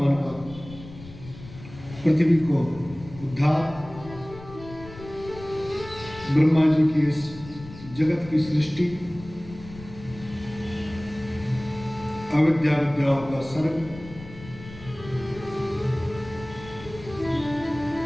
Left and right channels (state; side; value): noise; left; rumble, 16 dB below the sound